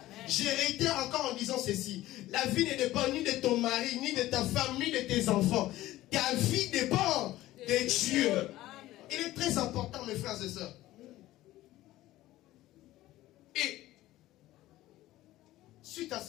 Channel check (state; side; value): quieter; right; 16.0 dB